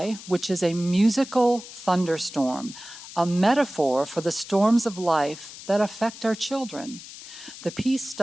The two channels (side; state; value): left; noise; hiss, 15 dB below the sound